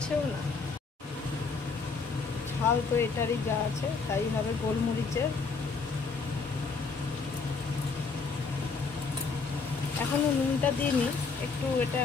না, ঝাল তো এটারই যা আছে তাই হবে গোলমরিচের। এখনো নুনটা দিইনি, একটু এটা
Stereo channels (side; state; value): right; quieter; 4.7 dB